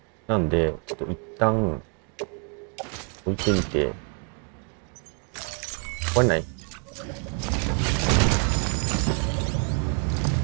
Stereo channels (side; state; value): left; quieter; 37.4 dB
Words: なんで、ちょっと一旦、置いてみて、壊れない？